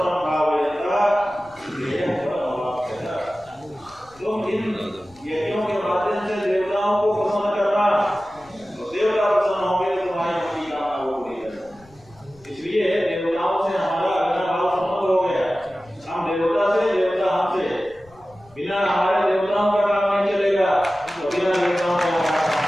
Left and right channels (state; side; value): noise; left; rumble, 27 dB below the sound